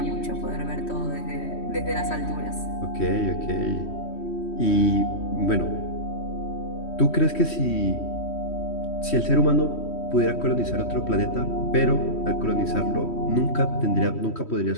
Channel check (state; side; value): late; right; 3.1 ms